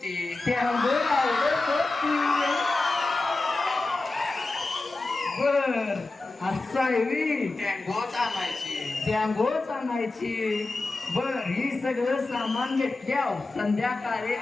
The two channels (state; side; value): quieter; right; 3.3 dB